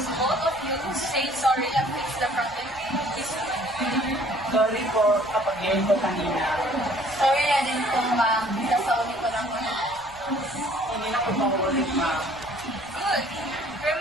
both of you say sorry and fix the problem. Sorry po kapag ngayon ko kanina. Sorry na din po, ma'am. Nasauli ko lang ulit. Hindi na ko paulit, ma'am. Good.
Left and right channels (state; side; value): noise; left; rumble, 26 dB below the sound